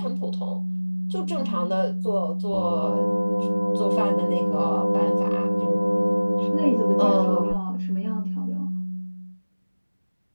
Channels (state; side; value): inverted; both; correlation -1.00